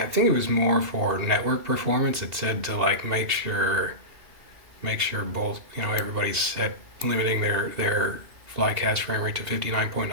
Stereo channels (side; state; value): left; late; 2.8 ms